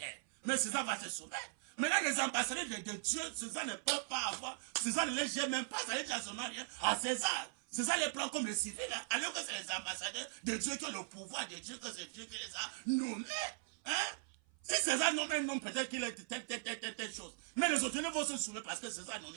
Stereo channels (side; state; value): left; silent; 51 dB below the other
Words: mais César va se soumettre. Maintenant, les ambassadeurs de Dieu, César ne peut pas avoir, César ne les gère même pas, ça ne dit absolument rien à César. César les prend comme les civils, hein, alors que c'est les ambassadeurs de Dieu qui ont le pouvoir de Dieu, que c'est Dieu qui les a nommés. Hein? Si César nomme un homme, peut-être qu'il est telle chose. Mais les autorités vont se soumettre parce que César